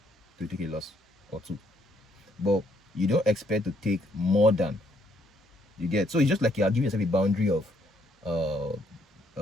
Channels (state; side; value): normal; both; correlation 0.70